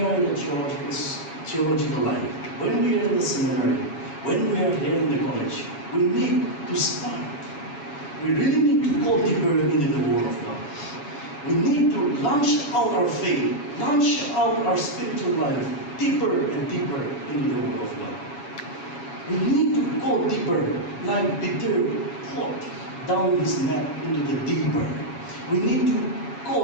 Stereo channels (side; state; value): right; late; 7.2 ms